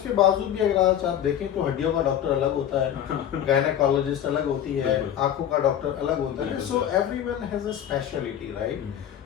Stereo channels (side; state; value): right; quieter; 10.2 dB